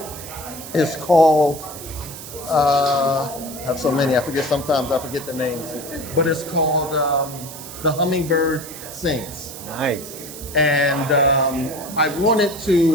is called, I have so many, sometimes I forget the names, but it's called The Hummingbird Sings. Nice. And I wanted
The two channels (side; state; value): right; noise; hiss, 12 dB below the sound